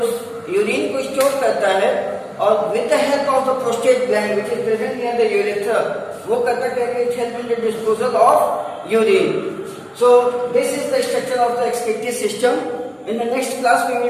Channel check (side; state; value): both; identical; correlation 1.00